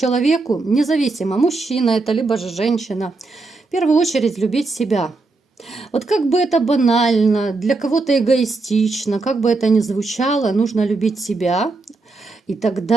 независимо, мужчина это, либо же женщина, в первую очередь любить себя. Вот как бы это банально, для кого-то эгоистично, как бы это ни звучало, нужно любить себя, и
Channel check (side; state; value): left; quieter; 3.6 dB